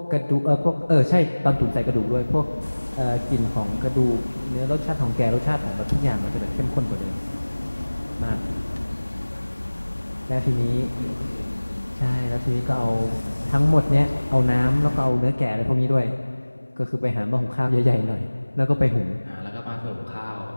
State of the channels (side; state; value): both; inverted; correlation -1.00